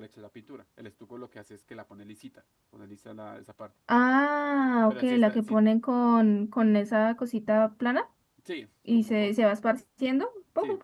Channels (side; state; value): both; identical; correlation 1.00